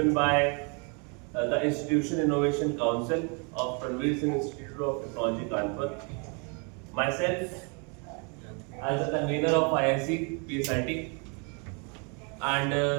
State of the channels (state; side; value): quieter; left; 35.4 dB